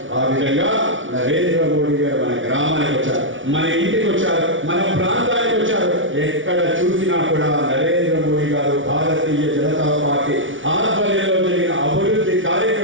ఆ విధంగా నరేంద్ర మోడీ గారు మన గ్రామానికి వచ్చారు, మన ఇంటికి వచ్చారు, మన ప్రాంతానికి వచ్చారు. ఎక్కడ చూసినా కూడా నరేంద్ర మోడీ గారు భారతీయ జనతా పార్టీ ఆధ్వర్యంలో జరిగిన అభివృద్ధి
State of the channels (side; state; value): left; late; 0.56 ms